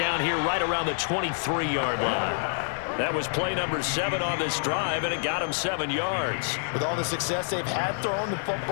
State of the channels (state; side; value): silent; right; digital silence